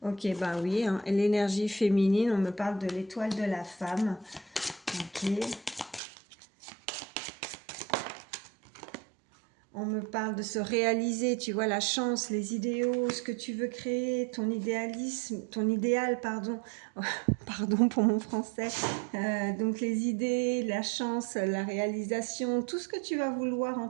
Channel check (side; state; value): left; drops out; at 6.0 s